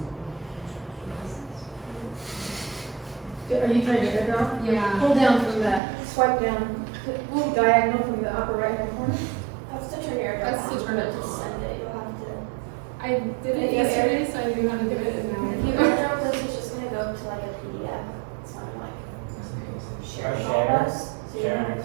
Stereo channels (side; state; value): left; drops out; at 5.8 s